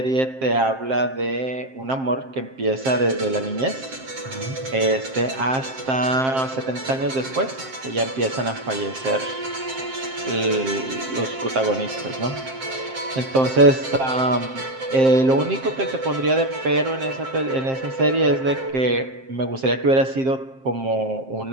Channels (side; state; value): left; late; 7.6 ms